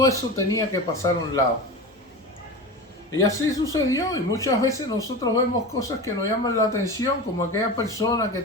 eso tenía que pasar a un lado. Y así sucedió, y muchas veces nosotros vemos cosas que nos llaman la atención, como aquella persona que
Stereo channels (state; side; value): normal; both; correlation 0.28